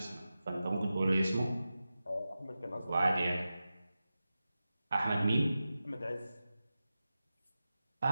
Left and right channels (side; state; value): both; inverted; correlation -0.93